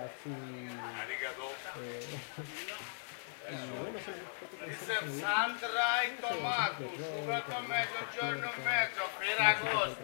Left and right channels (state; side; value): silent; right; digital silence